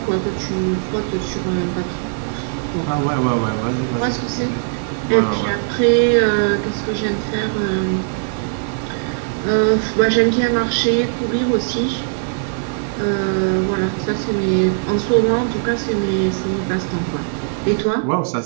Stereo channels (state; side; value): silent; left; digital silence